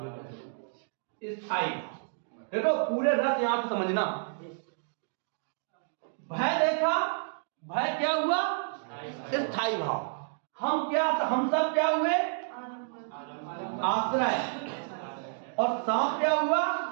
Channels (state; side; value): silent; left; digital silence